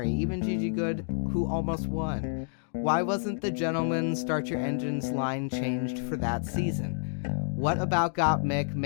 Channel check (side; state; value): right; silent; digital silence